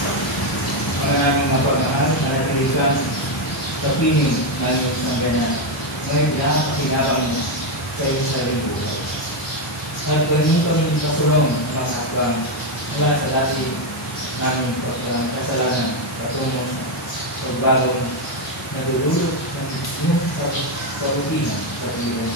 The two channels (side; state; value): both; normal; correlation 0.05